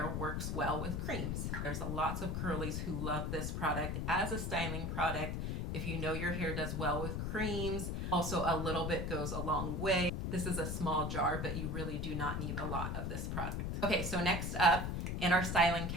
works well with creams. There's lots of curlies who love this product as a styling product. If you know your hair does well with creams, also a little bit goes a long way. This is a small jar, but you really do not need a lot of this product. Okay, so next up in our styling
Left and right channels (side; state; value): left; noise; rumble, 1 dB below the sound